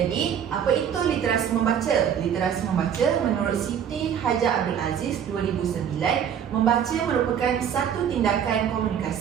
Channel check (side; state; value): left; quieter; 8.6 dB